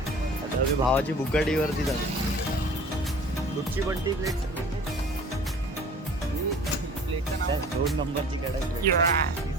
आता मी भावाची बुकाटीवरती जातो. कुठची बंटी प्लेट? 2 नंबरची कडक प्लेट.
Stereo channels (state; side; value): normal; both; correlation 0.45